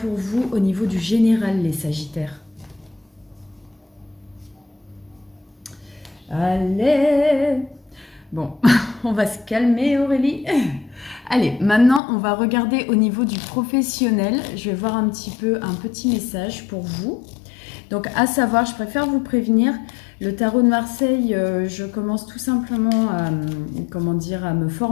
vous au niveau du général, les Sagittaires. Allez! Bon, on va se calmer Aurélie. Allez, maintenant on va regarder au niveau du professionnel. Je vais voir un petit message pour vous. Donc à savoir, je préfère vous prévenir, le tarot de Marseille, je commence tout simplement à, comment dire, à me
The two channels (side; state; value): right; drops out; at 12.0 s